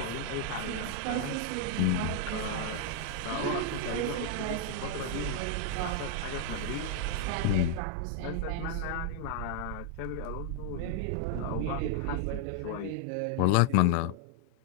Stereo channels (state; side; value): different; both; correlation 0.00